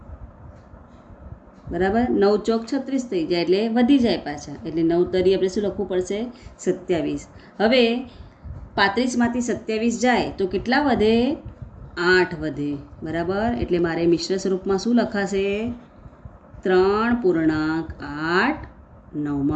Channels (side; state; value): both; identical; correlation 1.00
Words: બરાબર, 9 ચોક 36 થઈ જાય, એટલે વધી જાય પાછા, એટલે 9 તરી આપણે શું લખવું પડશે? 27. હવે 35માંથી 27 જાય તો કેટલા વધે? 8 વધે. બરાબર, એટલે મારે મિશ્ર સ્વરૂપમાં શું લખાશે? 3.8